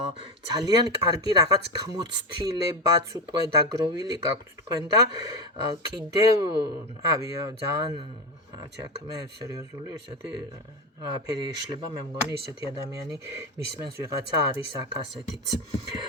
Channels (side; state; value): both; normal; correlation 0.15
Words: ძალიან კარგი რაღაც გამოცდილებაც უკვე დაგროვილი გაქვთ თქვენ და კიდევ ძალიან აქ მე სერიოზული ესეთი ფერი ეშლება მე მგონი ისეთი ადამიანი მისმენს ვიღაცა არის აქ ასეთიც